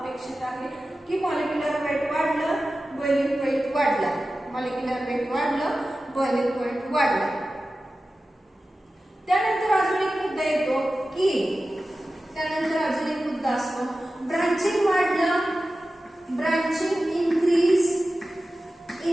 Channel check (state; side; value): normal; both; correlation 0.94